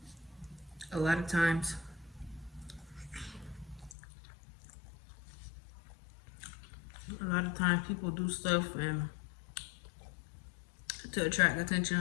a lot of times people do stuff and to attract attention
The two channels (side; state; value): right; drops out; at 4.0 s